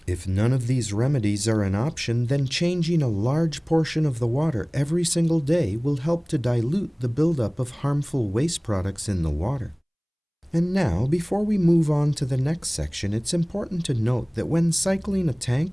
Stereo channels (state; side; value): identical; both; correlation 1.00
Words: If none of these remedies are an option, then changing a large portion of the water every single day will help to dilute the buildup of harmful waste products in the water. And now, before we move on to the next section, it's important to note that when cycling a